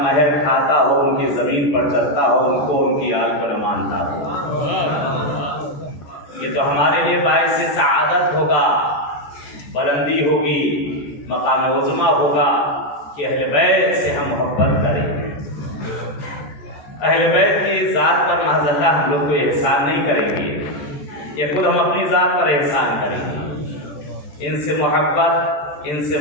महर खाता हो, उनकी जमीन पर चलता हो, उनको उनकी आल को न मानता हो। ये तो हमारे लिए बाइस सआदत होगा, बुलंदी होगी, मकाम उज़्मा होगा कि अहले बैत से हम मोहब्बत करें। अहले बैत की ज़ात पर महज़ल्ला हम लोग को एहसान नहीं करेंगे, ये खुद हम अपनी ज़ात पर एहसान करेंगे। इनसे मोहब्बत, इनसे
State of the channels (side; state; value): right; late; 14 ms